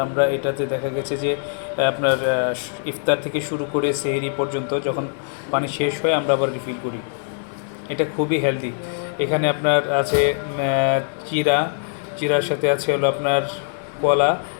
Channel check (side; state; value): right; silent; digital silence